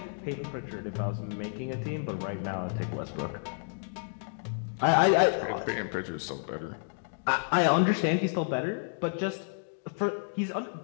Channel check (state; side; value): silent; right; digital silence